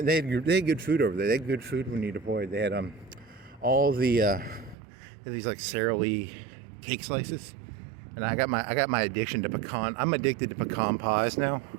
they had good food over there. They had good food when you deployed. They had all the these like Sara Lee cake slices, and I got my addiction to pecan. I'm addicted to pecan pies now,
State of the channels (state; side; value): drops out; left; at 4.8 s